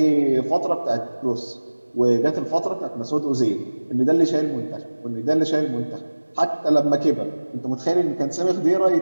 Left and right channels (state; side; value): inverted; both; correlation -1.00